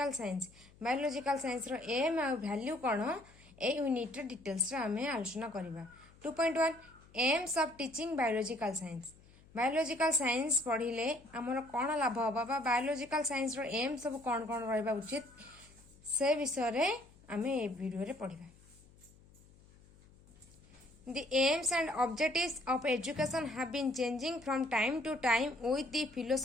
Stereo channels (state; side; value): noise; left; hum, 25 dB below the sound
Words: science biological science रो aim आ value कौन ए यूनिट डिटेल्स आम आलोचना करवा 2.1 aims of teaching biological science पढ़िले आमर कौन लाभ हम बायोलॉजिकल साइंस रो एम सब कौन कौन रहा उचित से विषय आम ए वीडियो पढ़ा The aims and objectives of education have been changing from time to time with the